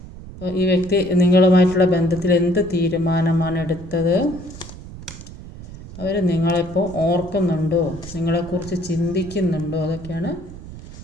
ഈ വ്യക്തി നിങ്ങളുമായിട്ടുള്ള ബന്ധത്തിൽ എന്ത് തീരുമാനമാണ് എടുത്തത്? അവർ നിങ്ങളെപ്പോൾ ഓർക്കുന്നുണ്ടോ? നിങ്ങളെക്കുറിച്ച് ചിന്തിക്കുന്നുണ്ടോ? അതൊക്കെയാണ്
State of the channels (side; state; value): right; noise; rumble, 14 dB below the sound